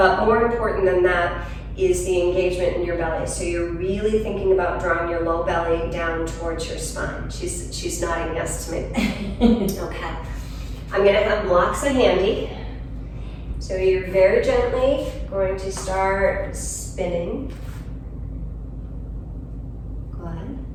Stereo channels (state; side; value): identical; both; correlation 1.00